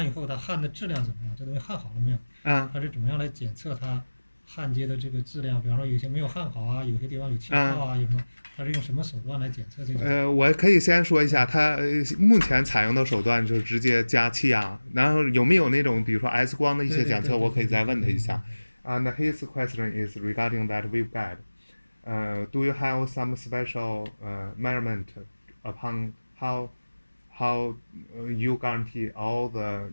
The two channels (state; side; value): inverted; both; correlation -1.00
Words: 以后，它焊的质量怎么样？这东西焊好了没有？它是怎么样来检测它焊接的这个质量？比方说有些没有焊好啊，有些地方有气泡啊，有什么？它是用什么手段来检测这个？我可以先说一下，它目前采用的手段就是直接加气压，然后有没有那种比如说 X 光的一些检测，我可以再问他一下。And his question is regarding that waveguide. Do you have some special measurement upon how you guarantee all the